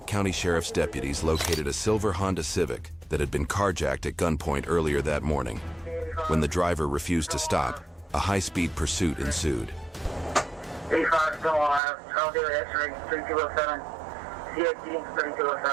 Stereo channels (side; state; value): left; drops out; at 11.8 s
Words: County Sheriff's deputies located a silver Honda Civic that had been carjacked at gunpoint earlier that morning. When the driver refused to stop, a high-speed pursuit ensued. 85 still alive. I'll do it. X-ray 3207. CXD